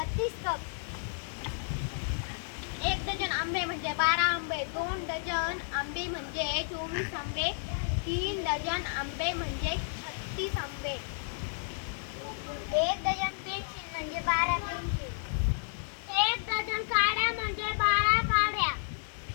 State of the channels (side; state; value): right; silent; digital silence